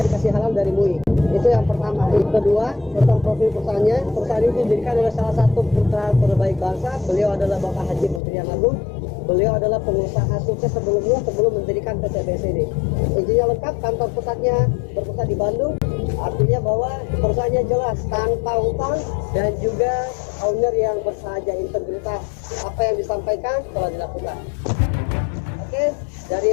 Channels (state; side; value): drops out; right; at 8.2 s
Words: kasih halal dari MUI. Itu yang pertama. Yang kedua, tentang profil perusahaannya. Perusahaan ini didirikan oleh salah satu putra terbaik bangsa. Beliau adalah Bapak Haji Muhyiddin Agung. Beliau adalah pengusaha sukses sebelum mendirikan PT BES ini. Izinnya lengkap, kantor pusatnya berpusat di Bandung. Artinya bahwa perusahaannya jelas, tanpa utang dan juga owner yang bersahaja, integritas. Apa yang disampaikan telah dilakukan. Oke, dari